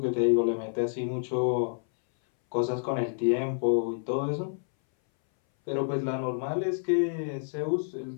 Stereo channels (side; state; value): right; silent; 59 dB below the other